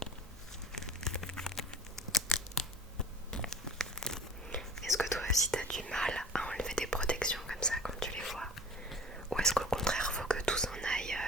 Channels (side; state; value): both; normal; correlation 0.41